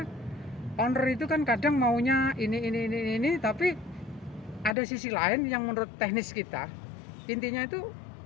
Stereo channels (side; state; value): right; drops out; at 4.8 s